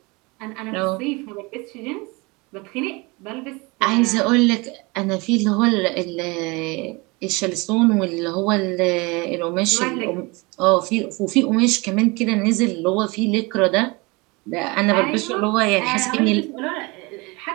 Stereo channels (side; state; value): left; quieter; 26.0 dB